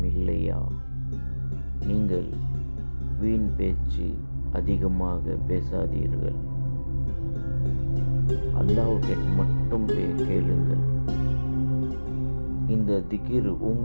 இல்லையா? நீங்கள் வீண் பேச்சு அதிகமாக பேசாதீர்கள். அல்லாஹ்வை மட்டும் கேளுங்கள். இந்த திக்ர்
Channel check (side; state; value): both; inverted; correlation -1.00